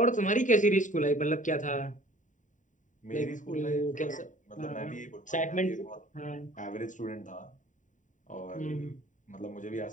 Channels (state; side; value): late; right; 0.36 ms